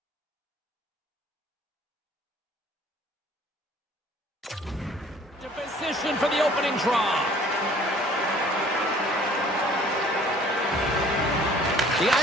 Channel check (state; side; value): normal; both; correlation 0.54